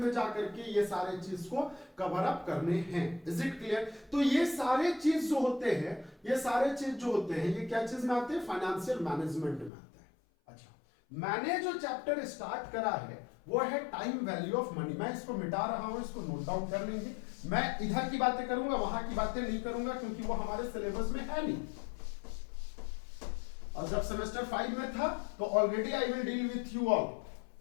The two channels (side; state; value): right; drops out; at 9.7 s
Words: जाकर के ये सारे चीज को कवर अप करने हैं। Is it clear? तो ये सारे चीज जो होते हैं, ये क्या चीज में आते हैं? फाइनेंशियल मैनेजमेंट में आते हैं। अच्छा, मैंने जो चैप्टर स्टार्ट करा है वो है टाइम वैल्यू ऑफ मनी। मैं इसको मिटा रहा हूं, इसको नोट डाउन कर लेंगे। मैं इधर की बातें करूंगा, वहां की बातें नहीं करूंगा, क्योंकि वो हमारे सिलेबस में है नहीं। और जब सेमेस्टर 5 में था तो already I will deal with you all.